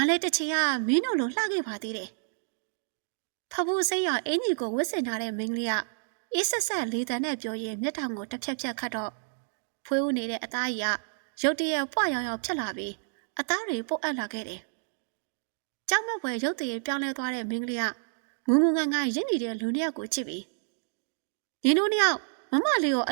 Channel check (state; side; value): silent; left; digital silence